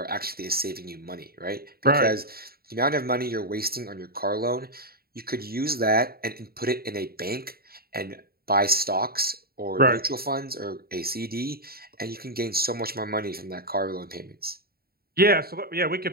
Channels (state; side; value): late; left; 0.44 ms